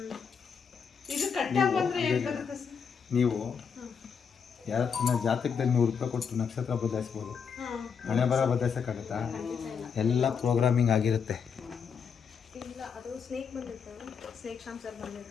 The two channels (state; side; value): quieter; right; 6.5 dB